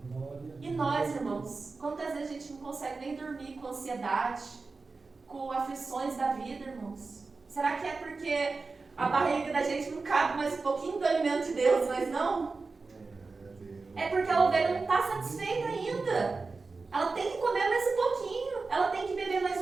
E nós, irmãos, quantas vezes a gente não consegue nem dormir com ansiedade, com aflições da vida, irmãos? Será que é porque a barriga da gente não cabe mais um pouquinho do alimento de Deus, mas não? É porque a ovelha não está satisfeita ainda. Ela tem que comer mais um pouquinho. Ela tem que beber mais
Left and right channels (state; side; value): quieter; left; 4.0 dB